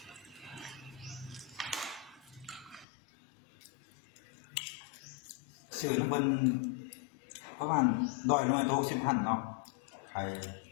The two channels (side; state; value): right; drops out; at 2.9 s